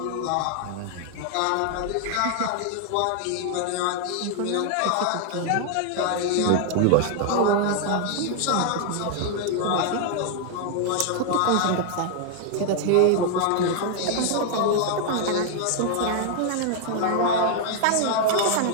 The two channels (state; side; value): different; both; correlation 0.00